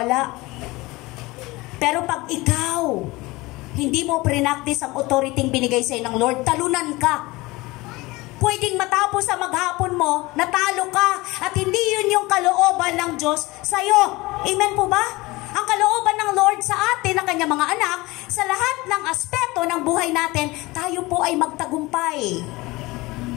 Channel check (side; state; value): right; quieter; 21.6 dB